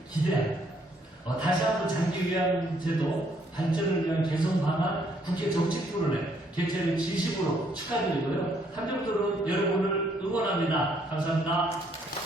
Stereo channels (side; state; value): both; normal; correlation 0.69